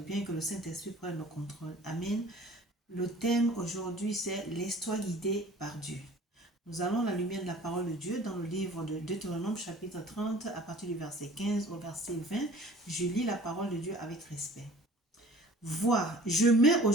que le Saint-Esprit prenne le contrôle. Amen. Le thème aujourd'hui, c'est l'histoire guidée par Dieu. Nous allons à la lumière de la parole de Dieu dans le livre de Deutéronome chapitre 30 à partir du verset 15 au verset 20. Je lis la parole de Dieu avec respect. Vois, je mets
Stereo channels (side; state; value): both; normal; correlation 0.47